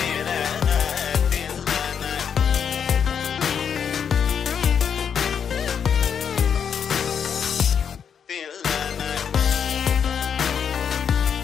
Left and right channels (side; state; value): right; quieter; 7.5 dB